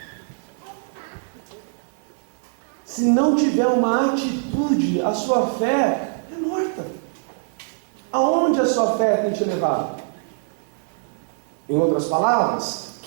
Se não tiver uma atitude, a sua fé é morta. Aonde a sua fé tem te levado? Em outras palavras,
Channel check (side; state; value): left; silent; 63 dB below the other